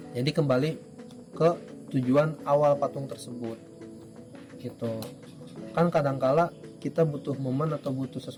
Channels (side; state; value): both; identical; correlation 1.00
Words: Jadi kembali ke tujuan awal patung tersebut, gitu. Kan kadangkala kita butuh momen atau butuh